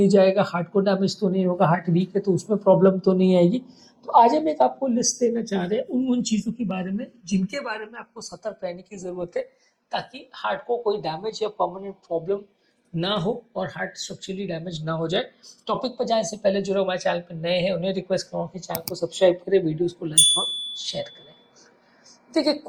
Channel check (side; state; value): both; identical; correlation 1.00